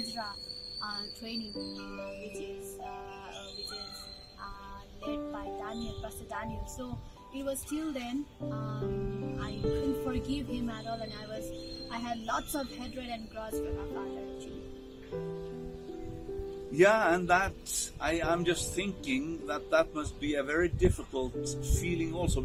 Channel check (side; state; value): both; identical; correlation 1.00